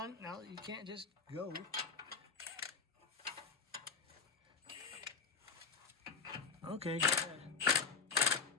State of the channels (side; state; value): right; quieter; 5.3 dB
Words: Now, you can't just go. Okay, go ahead. It's